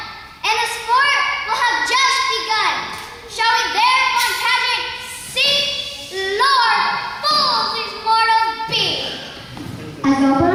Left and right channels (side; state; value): both; identical; correlation 1.00